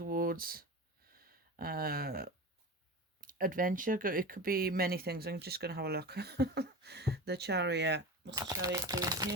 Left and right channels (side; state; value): both; normal; correlation 0.28